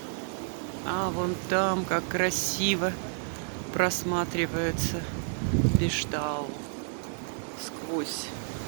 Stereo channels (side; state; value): left; silent; digital silence